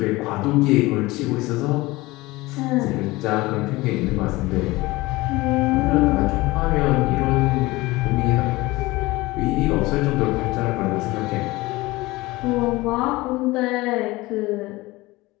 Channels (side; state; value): right; quieter; 20.6 dB